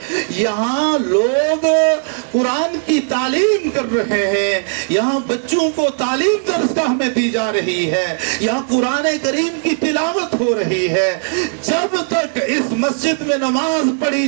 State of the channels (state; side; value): silent; left; digital silence